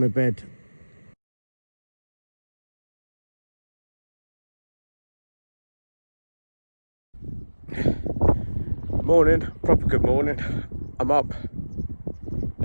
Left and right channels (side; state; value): both; inverted; correlation -1.00